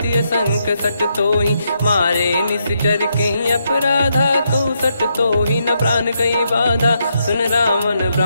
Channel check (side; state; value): both; inverted; correlation -0.79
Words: संक सट तोहि। मारे निश्चर कहीं अपराधा, कहूँ सट तोहि न प्राण कहीं बाधा। सुन रावण